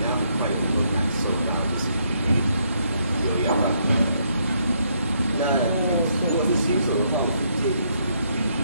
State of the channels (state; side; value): inverted; both; correlation -0.73